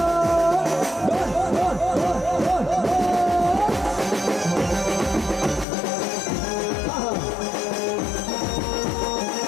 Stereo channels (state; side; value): drops out; right; at 5.7 s